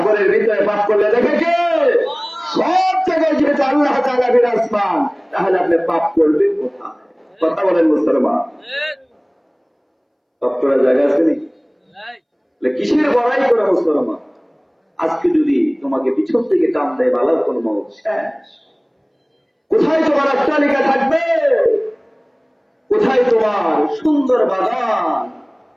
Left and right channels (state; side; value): identical; both; correlation 1.00